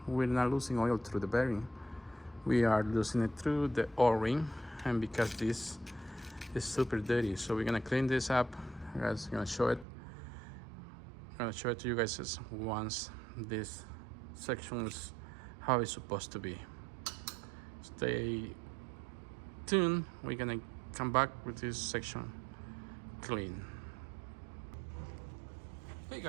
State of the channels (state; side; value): drops out; left; at 9.9 s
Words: We're not losing oil through the bearing. We are losing it through the O-ring, and because this is super dirty. So we're gonna clean this up. I'm gonna show it. I'm gonna show it to you guys once this section is how it's supposed to be. Stay tuned. We're gonna come back with this section clean. Hey